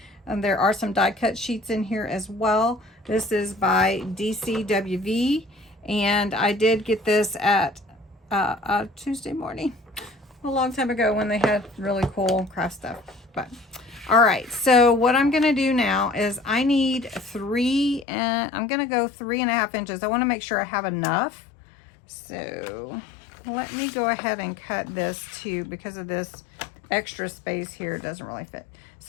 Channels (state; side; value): drops out; right; at 18.1 s